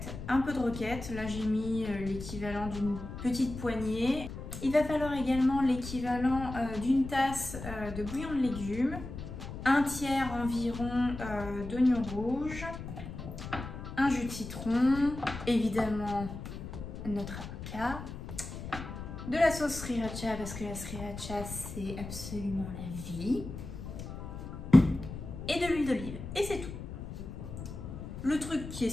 un peu de roquette. Là j'ai mis l'équivalent d'une petite poignée. Il va falloir également l'équivalent d'une tasse de bouillon de légumes, un tiers environ d'oignons rouges, un jus de citron, évidemment notre avocat, de la sauce sriracha parce que la sriracha c'est absolument la vie, et de l'huile d'olive, et c'est tout. Le truc qui est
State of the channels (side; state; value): left; noise; rumble, 9 dB below the sound